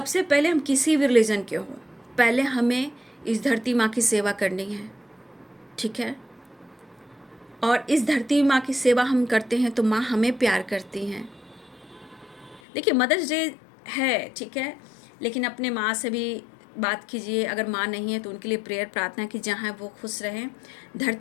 पहले हम किसी भी रिलीजन के हो, पहले हमें इस धरती माँ की सेवा करनी है, ठीक है। और इस धरती माँ की सेवा हम करते हैं तो माँ हमें प्यार करती हैं। देखिए, मदर्स डे है, ठीक है, लेकिन अपने माँ से भी बात कीजिए। अगर माँ नहीं है तो उनके लिए प्रेयर, प्रार्थना की, जहाँ वो खुश रहें।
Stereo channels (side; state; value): right; drops out; at 12.6 s